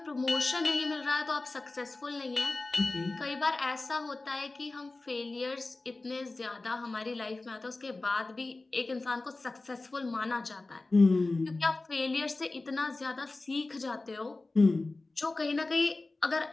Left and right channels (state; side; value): quieter; right; 3.2 dB